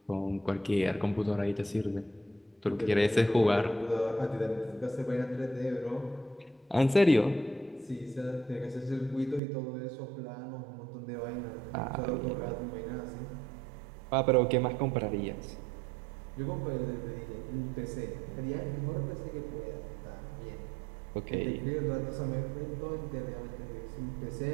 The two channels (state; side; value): drops out; left; at 9.4 s